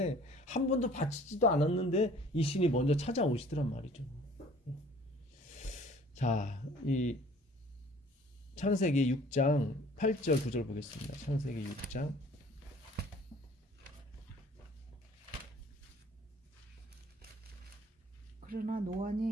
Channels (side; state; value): both; normal; correlation 0.52